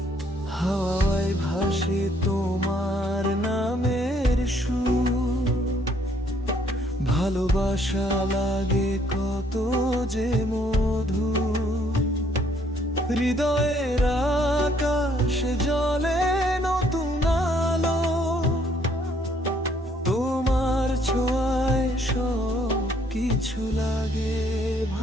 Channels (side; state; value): both; normal; correlation 0.66